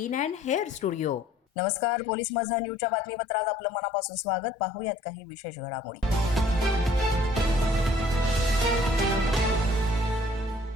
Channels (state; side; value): normal; both; correlation 0.57